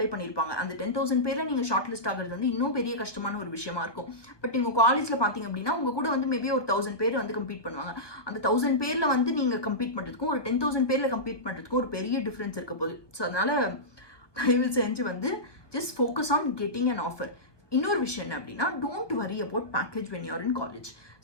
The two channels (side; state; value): right; late; 1.2 ms